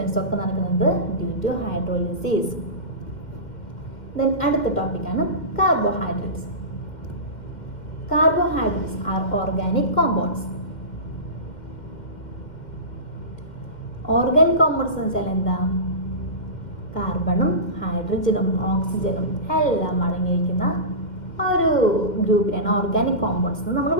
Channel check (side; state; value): right; late; 2.1 ms